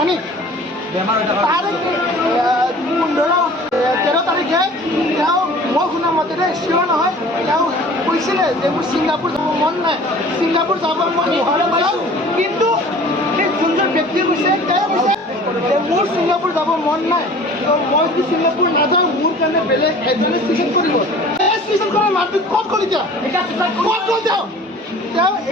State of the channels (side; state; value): both; normal; correlation 0.46